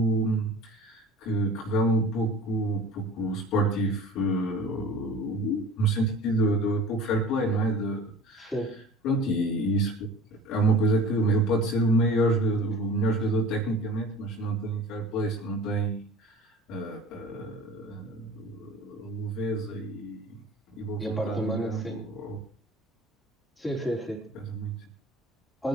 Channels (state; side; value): normal; both; correlation 0.41